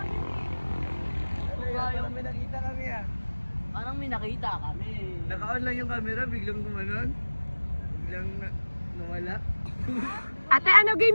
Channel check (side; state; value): both; inverted; correlation -1.00